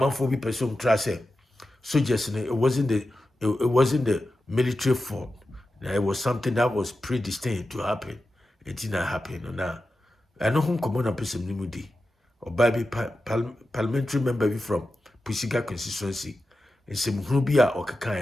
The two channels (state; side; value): normal; both; correlation 0.92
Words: for be person try say soldiers, it wasn't the military form. It was something that was predestined to happen. It did not happen. Now, I know whom come on a person nimudi or baby parliamentary member from Pusiga constituency. And some Rubia or Kaka